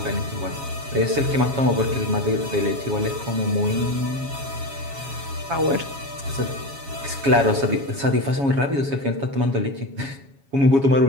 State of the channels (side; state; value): left; late; 7.3 ms